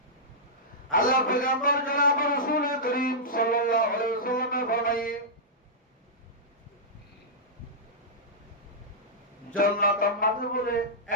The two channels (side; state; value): both; normal; correlation -0.12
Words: আল্লাহ পয়গম্বর জনাব রাসূল করিম সাল্লাল্লাহু আলাইহি ওয়াসাল্লাম ফরমায়ে, জান্নাতের মাঝে বলে